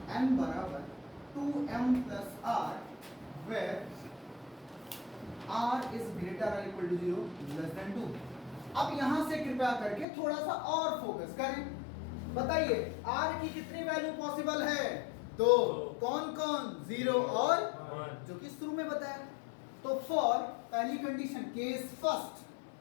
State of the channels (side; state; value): right; drops out; at 10.1 s